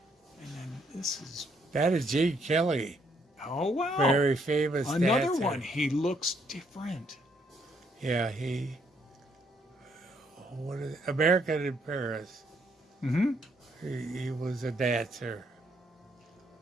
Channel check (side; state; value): both; normal; correlation 0.71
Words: And then this is, That is Gene Kelly, oh wow. very famous Another dancer. one. He looks different. Yeah, American in Paris. Mm-hmm. He was a dancer,